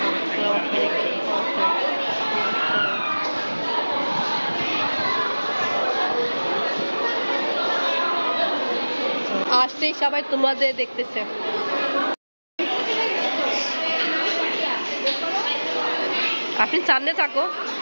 আসতেই সবাই তোমাদের দেখতেছে। আপনি সামনে থাকো।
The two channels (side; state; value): both; inverted; correlation -1.00